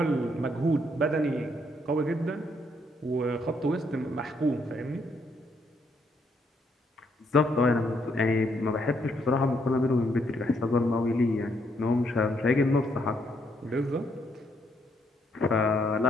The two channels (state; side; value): normal; both; correlation 0.73